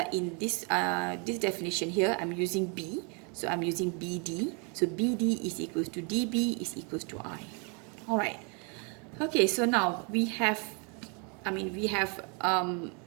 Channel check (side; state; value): left; quieter; 35.1 dB